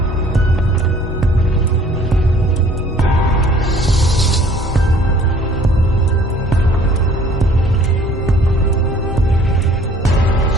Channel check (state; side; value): normal; both; correlation 0.55